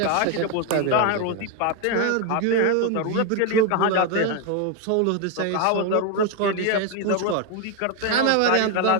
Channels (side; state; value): both; different; correlation 0.01